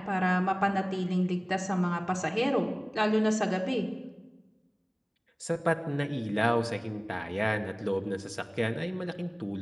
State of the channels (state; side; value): identical; both; correlation 1.00